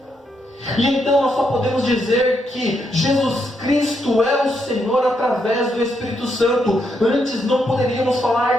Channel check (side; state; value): both; normal; correlation 0.78